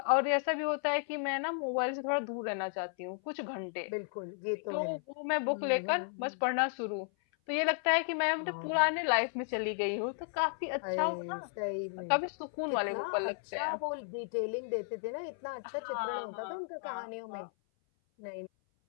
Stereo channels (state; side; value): silent; right; 55 dB below the other